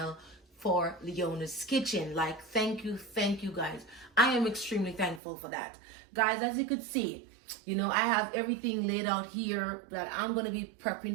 for Leona's Kitchen. Like, thank you guys. I am extremely thankful for that. Guys, as you could see, you know, I have everything laid out here that I'm going to be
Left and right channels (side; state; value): left; drops out; at 5.2 s